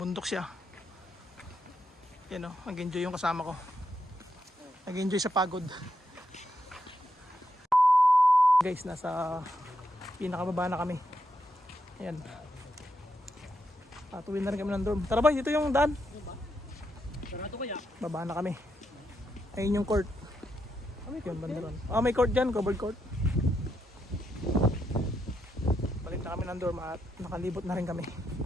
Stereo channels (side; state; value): both; normal; correlation 0.82